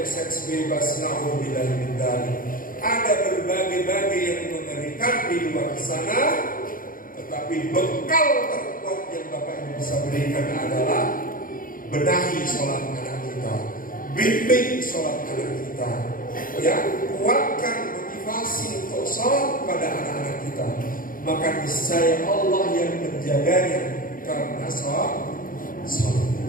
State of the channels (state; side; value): late; right; 0.40 ms